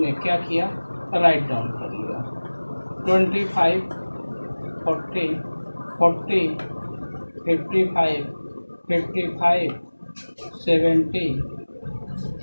क्या किया? राइट डाउन कर लिया 25, 40, 40, 55, 55, 70,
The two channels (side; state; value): both; inverted; correlation -1.00